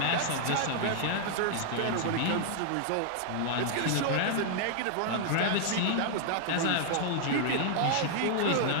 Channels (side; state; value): both; different; correlation -0.01